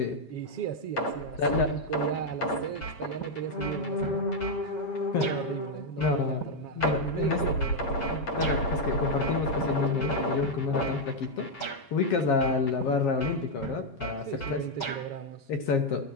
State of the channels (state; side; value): late; right; 7.3 ms